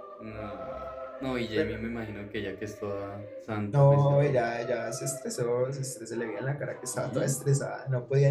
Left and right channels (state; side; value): identical; both; correlation 1.00